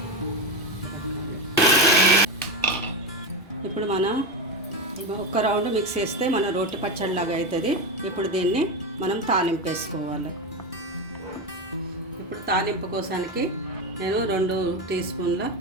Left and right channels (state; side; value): normal; both; correlation 0.16